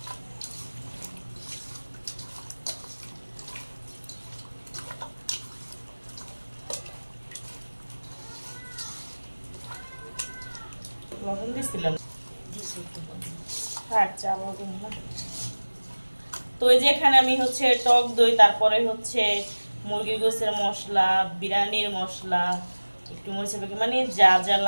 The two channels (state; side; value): inverted; both; correlation -1.00